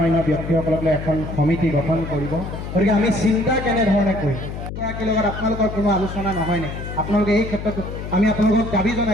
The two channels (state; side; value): noise; left; hum, 8 dB below the sound